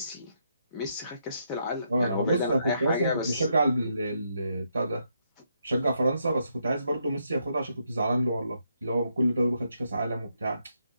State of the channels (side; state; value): both; inverted; correlation -0.77